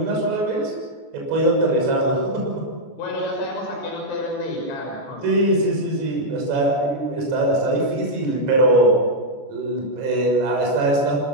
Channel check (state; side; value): late; right; 14 ms